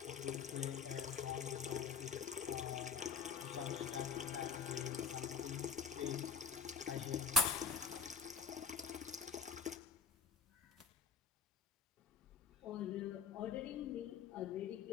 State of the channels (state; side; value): quieter; right; 5.7 dB